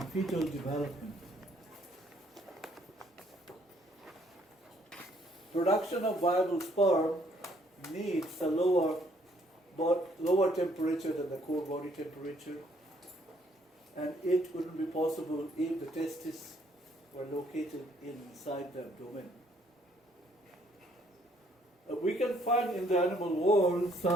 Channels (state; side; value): normal; both; correlation 0.66